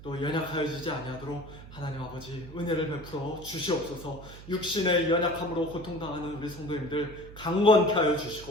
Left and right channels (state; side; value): noise; right; hum, 16 dB below the sound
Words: 또 연약하여지지 아니하도록 하나님 아버지 은혜를 베풀어 주시옵소서. 육신의 연약함으로 고통당하는 우리 성도님들 강건케 하여